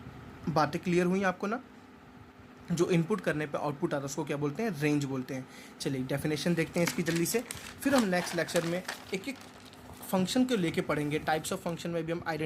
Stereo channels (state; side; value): identical; both; correlation 1.00